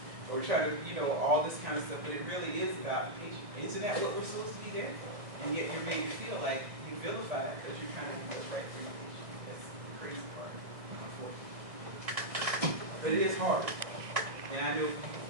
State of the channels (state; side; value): late; left; 1.7 ms